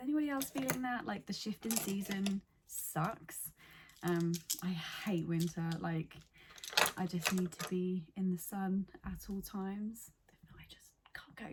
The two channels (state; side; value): identical; both; correlation 1.00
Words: anybody else feeling that? Like the shift in season sucks. I hate winter. Like, I just need to be in the sun at all times. If not, I just can't